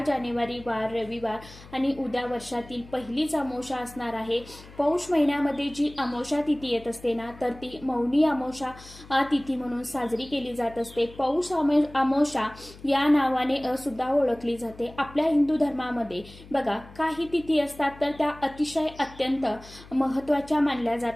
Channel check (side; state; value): left; noise; hum, 20 dB below the sound